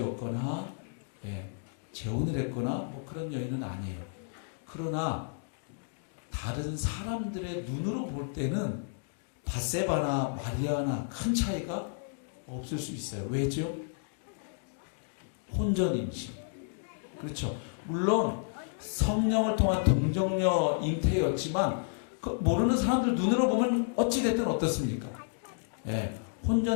재혼을 했거나 뭐 그런 여인은 아니에요. 그러나 다른 사람들의 눈으로 볼 때는 밧세바나 마리아나 큰 차이가 없을 수 있어요. 왜죠? 혼전 임신. 그렇죠. 물론 성령을 통한 동정녀 잉태였지만 그 모르는 사람들 눈으로 보면 어찌됐든 어떻습니까?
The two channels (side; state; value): right; silent; digital silence